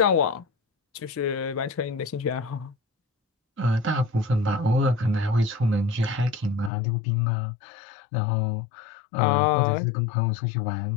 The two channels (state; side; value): drops out; right; at 6.7 s